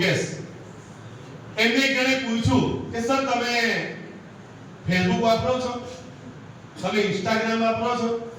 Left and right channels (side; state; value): both; identical; correlation 1.00